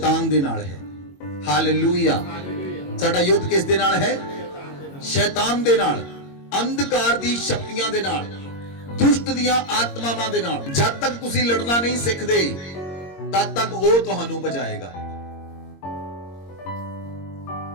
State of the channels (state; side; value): late; right; 22 ms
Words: दे नाल है। हालेलुया। साडा युद्ध किस दे नाल है? शैतान दे नाल, अंधकार दी शक्तियां दे नाल, दुष्ट दियां आत्मावां दे नाल। जब तक तुसी लड़ना नहीं सिखदे तद तक वो तुहानू बचाएगा।